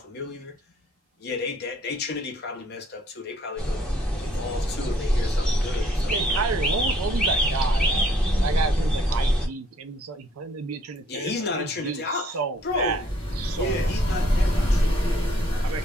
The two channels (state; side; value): normal; both; correlation 0.63